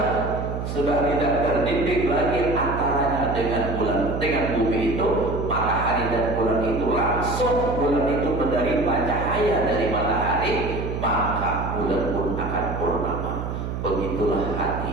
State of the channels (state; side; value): noise; right; hum, 4 dB below the sound